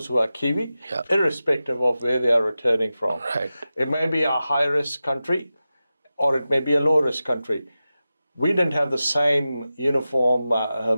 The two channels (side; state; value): both; inverted; correlation -0.93